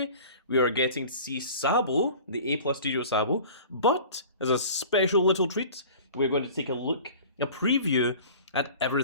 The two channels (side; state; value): both; inverted; correlation -0.42